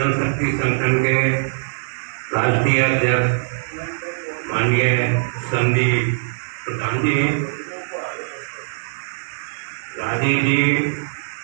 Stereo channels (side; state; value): left; silent; digital silence